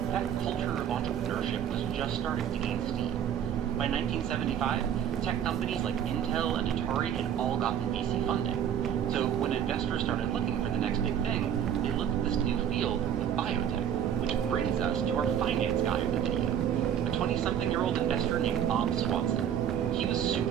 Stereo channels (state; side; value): quieter; left; 9.4 dB